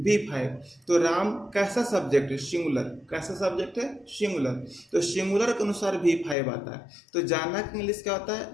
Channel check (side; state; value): right; drops out; at 6.4 s